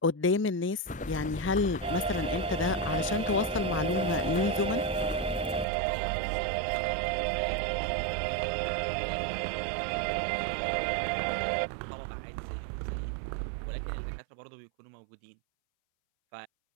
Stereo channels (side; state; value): left; drops out; at 5.7 s